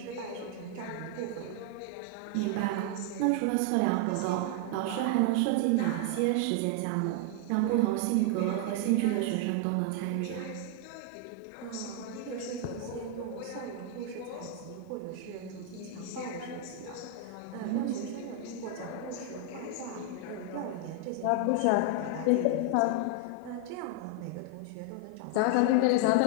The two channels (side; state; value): both; different; correlation 0.00